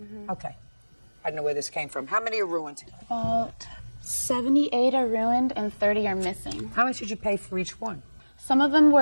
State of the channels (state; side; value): inverted; both; correlation -1.00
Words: Okay. I don't know where this came from. How many are ruined? About 78 are ruined and 30 are missing. How much did you pay for each one? Some of them